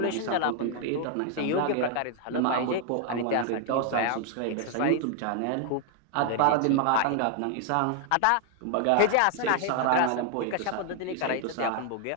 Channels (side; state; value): both; different; correlation 0.00